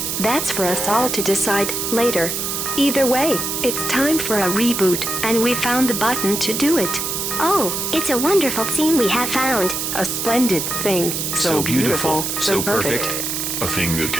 That's for us all to decide later. Either way, it's time for a reboot, and we found the button to do it. Oh, it's a wonderful thing we have found. A splendid thing. So beautiful, so perfect. A thing that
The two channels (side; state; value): right; noise; hiss, 2 dB below the sound